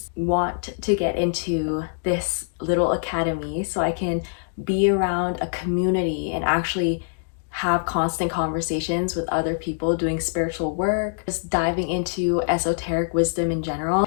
Want to get into this little academy so I can be around a community and actually have constant conversations with other people doing spiritual work, just diving into esoteric wisdom in general.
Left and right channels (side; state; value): right; silent; digital silence